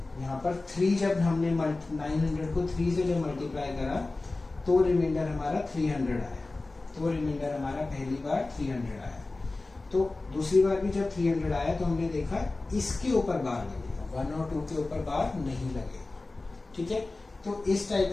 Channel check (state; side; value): quieter; right; 3.2 dB